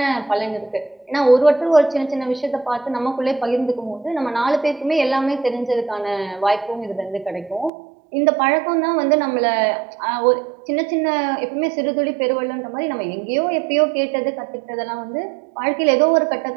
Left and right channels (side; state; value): left; drops out; at 7.7 s